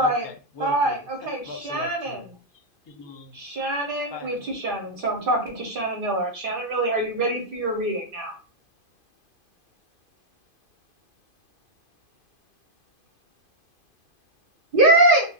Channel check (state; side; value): late; left; 2.5 ms